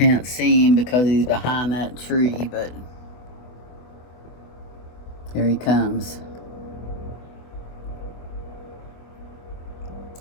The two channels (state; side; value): late; right; 24 ms